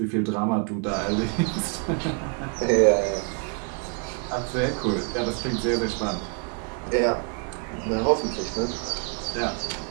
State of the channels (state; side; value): quieter; left; 36.3 dB